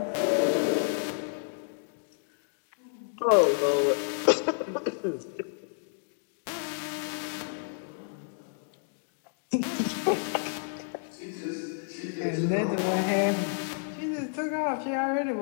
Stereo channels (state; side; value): silent; right; digital silence